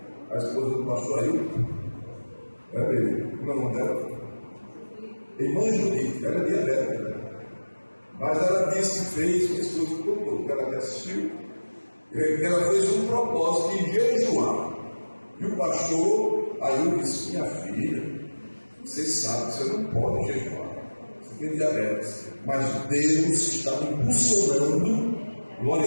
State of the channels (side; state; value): both; inverted; correlation -1.00